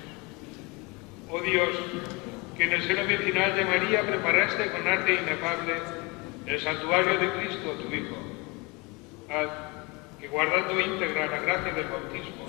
Oh Dios, que en el seno virginal de María preparaste con arte inefable el santuario de Cristo, tu Hijo. Haz que, guardando íntegra la gracia del bautismo,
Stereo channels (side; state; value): right; quieter; 27.0 dB